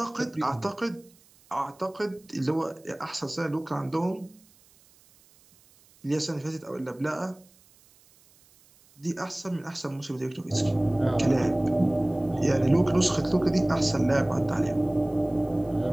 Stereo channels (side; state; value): right; noise; hiss, 29 dB below the sound